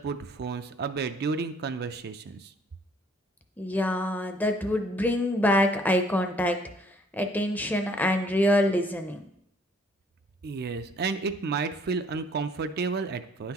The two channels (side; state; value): both; normal; correlation 0.60